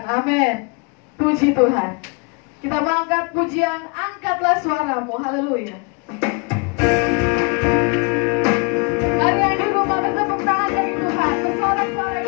Amin. Puji Tuhan. Kita mengangkat pujian, angkatlah suaramu. Haleluya. Mari yang di rumah bertepuk tangan bagi Tuhan. Bersorak-sorai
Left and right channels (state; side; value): quieter; right; 32.6 dB